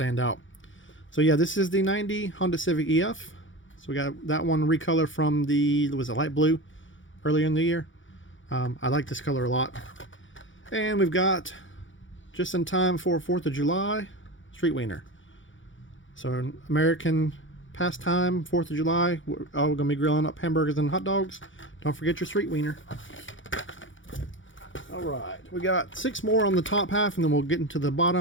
out. So yeah, this is the 90 Honda Civic EF. So we got that one recolor from the, was it light blue earlier in the year. I like this color a lot. And we've got, just in time for 4th of July, Street Wiener. So an American pastime, 4th of July. We're going to be grilling up hamburgers and hot dogs. Don't forget your Street Wiener. Alright, we got 6 more on the top half, and then we'll get into the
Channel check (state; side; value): late; right; 0.56 ms